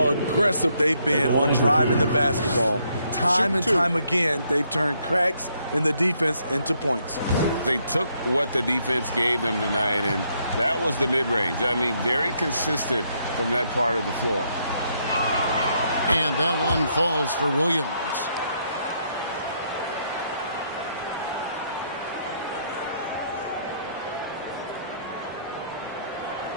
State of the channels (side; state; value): both; inverted; correlation -0.73